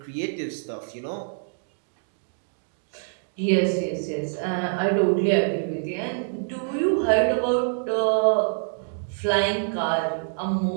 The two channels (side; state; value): left; silent; digital silence